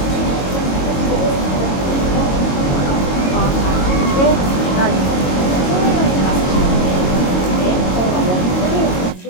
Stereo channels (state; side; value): late; right; 22 ms